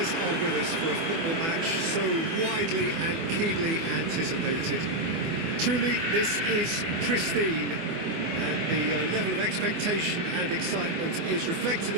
are with us for a football match so widely and keenly anticipated. Truly, this is pristine, and the level of expectation and excitement is reflected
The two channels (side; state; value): left; late; 24 ms